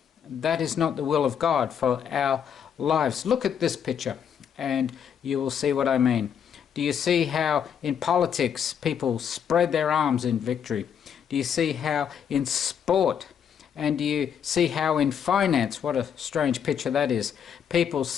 That is not the will of God for our lives. Look at this picture and you will see what I mean. Do you see how in politics people spread their arms in victory? Do you see how in sport? And do you see how in finance, what a strange picture that is, people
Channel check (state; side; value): quieter; right; 8.1 dB